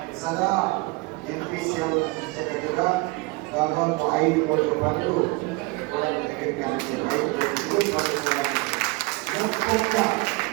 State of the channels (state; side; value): quieter; left; 24.9 dB